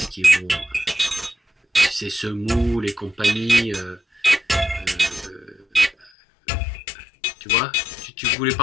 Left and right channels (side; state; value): right; drops out; at 6.1 s